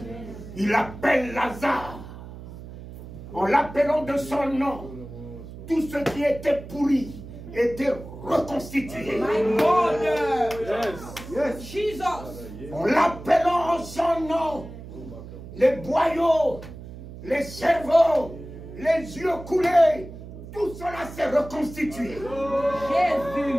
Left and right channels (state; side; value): noise; right; hum, 13 dB below the sound